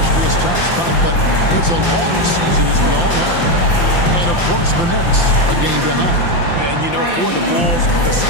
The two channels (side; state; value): right; late; 5.8 ms